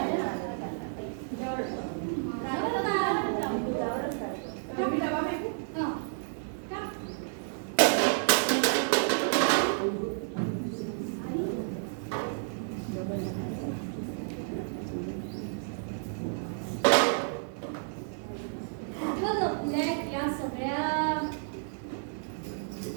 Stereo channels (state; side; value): silent; left; digital silence